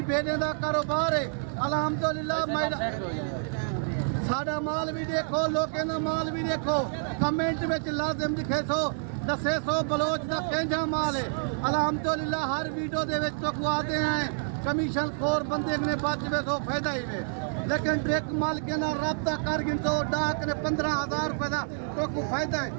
भेड़े का कारोबार है अल्हम्दुलिल्लाह। साडा माल भी देखो, लोगों का माल भी देखो, कमेंट में लाजिम लिखे सो दसे सो बलोच का केंजा माल है अल्हम्दुलिल्लाह। हर वीडियो दे विच तो आते हैं कमीशन खोर बंदे ने बचवे सो फायदा ही है, लेकिन डायरेक्ट माल के ना रब्ता कर गिन सो डाक ने 15,000 रुपए का तो को फायदा है।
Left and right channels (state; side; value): silent; left; 59 dB below the other